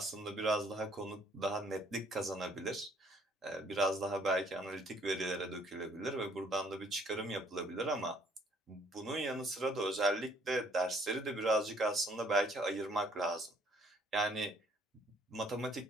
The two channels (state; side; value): normal; both; correlation 0.62